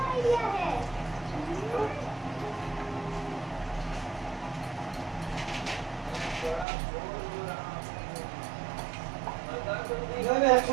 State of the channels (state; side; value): drops out; left; at 6.7 s